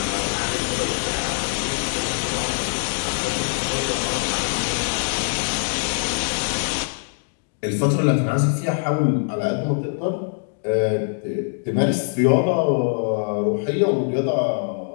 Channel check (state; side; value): silent; right; digital silence